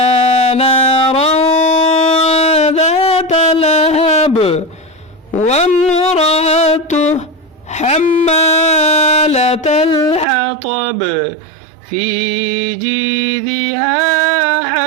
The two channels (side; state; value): left; drops out; at 10.2 s